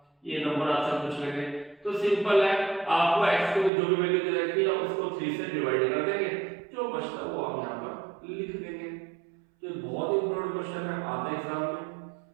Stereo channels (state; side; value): drops out; left; at 3.7 s